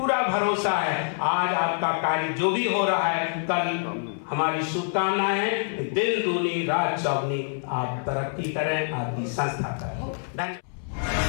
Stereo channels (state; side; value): silent; right; 61 dB below the other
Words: भरोसा है आज आपका कार्य जो भी हो रहा है, कल हमारी शुभकामनाएं हैं, दिन दूनी रात चौगनी आप तरक्की करें, आपकी संस्था करें। धन्यवाद।